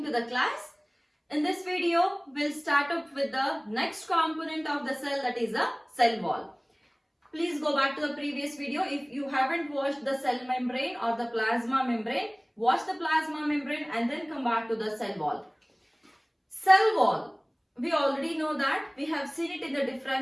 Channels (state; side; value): identical; both; correlation 1.00